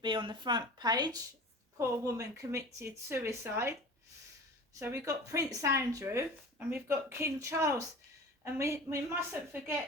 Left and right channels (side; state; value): both; normal; correlation 0.37